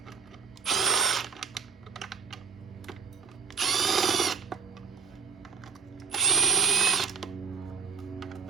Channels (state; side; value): quieter; left; 6.0 dB